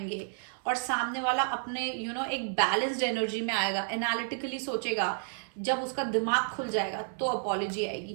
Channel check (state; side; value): silent; left; 57 dB below the other